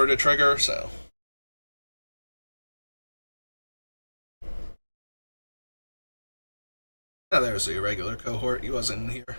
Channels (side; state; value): both; inverted; correlation -1.00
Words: to trigger. So there's the irregular cohort. He wasn't in here.